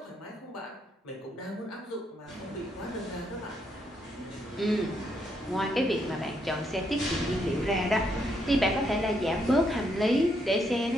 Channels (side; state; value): both; normal; correlation 0.76